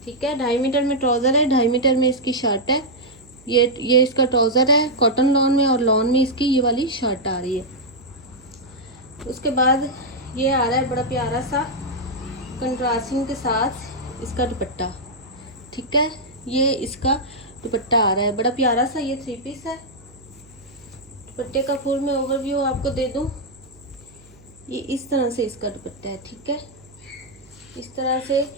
ठीक है। 2.5 मीटर में ट्राउज़र है, 2.5 मीटर में इसकी शर्ट है। ये इसका ट्राउज़र है कॉटन लॉन में, और लॉन में इसकी ये वाली शर्ट आ रही है। उसके बाद ये आ रहा है बड़ा प्यारा सा कंट्रास्टिंग के साथ इसका दुपट्टा, ठीक है। ये इसका दुपट्टा आ रहा है बड़ा प्यारा सा, ये 3 पीस है। दुपट्टे का फुल मैं ओवरव्यू आपको दे दूं। ये इस तरह से इसका दुपट्टा है, ठीक है। इस तरह से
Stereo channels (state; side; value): noise; right; hum, 26 dB below the sound